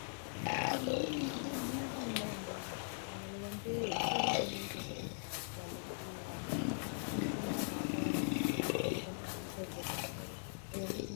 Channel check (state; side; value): silent; right; digital silence